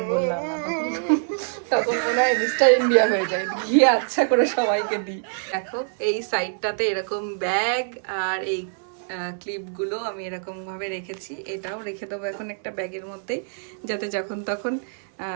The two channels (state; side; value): silent; left; 62 dB below the other